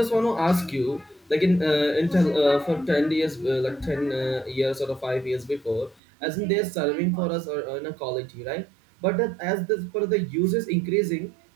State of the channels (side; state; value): left; drops out; at 6.0 s